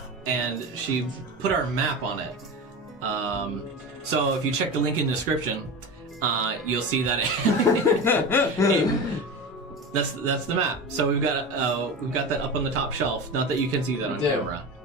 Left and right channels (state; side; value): normal; both; correlation 0.26